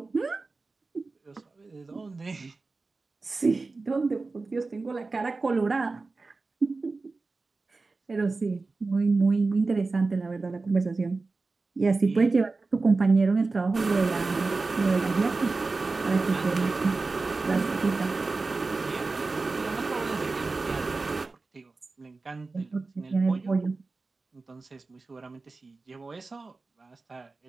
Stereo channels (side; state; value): left; quieter; 3.8 dB